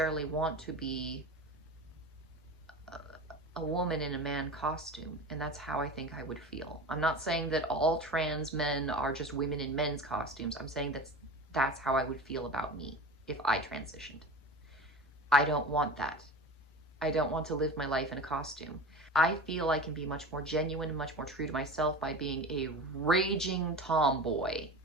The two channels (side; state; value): both; normal; correlation 0.32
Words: want to be a woman in a man costume, and that's how I think I would feel. I'm not saying that all trans men are just women in men's costumes. I'm saying that's how I would feel about me if I transitioned. I don't want that. I don't want to live my life in a costume. I feel I can be much more genuine and much more true to myself by being a raging tomboy.